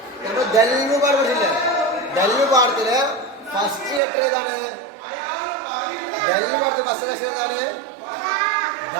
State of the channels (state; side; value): drops out; left; at 4.0 s